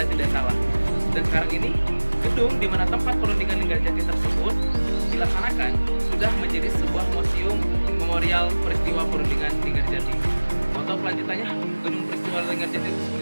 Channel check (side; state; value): both; inverted; correlation -1.00